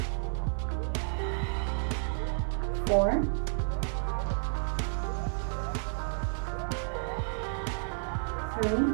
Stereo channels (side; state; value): left; silent; 57 dB below the other